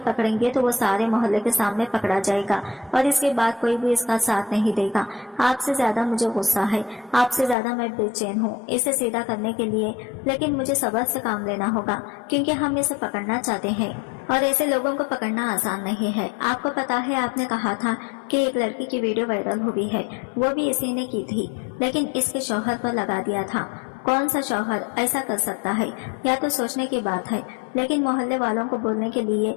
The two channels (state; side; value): drops out; right; at 7.6 s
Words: पकड़ेंगे तो वो सारे मोहल्ले के सामने पकड़ा जाएगा और इसके बाद कोई भी इसका साथ नहीं देगा। आपसे ज्यादा मुझे गुस्सा है, आपसे ज्यादा मैं बेचैन हूँ इसे सीधा करने के लिए, लेकिन मुझे सब्र से काम लेना होगा क्योंकि हम इसे पकड़ना चाहते हैं और ऐसे लोगों को पकड़ना आसान नहीं है। आपको पता है, आपने कहा था कि एक लड़की की वीडियो वायरल हुई है, वो भी इसी ने की थी, लेकिन इसके शौहर पर लगा दिया था। कौन सा शौहर ऐसा कर सकता है? या तो सोचने की बात है, लेकिन मोहल्ले वालों को बोलने के लिए